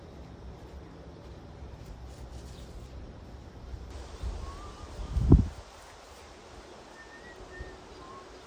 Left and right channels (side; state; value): both; identical; correlation 1.00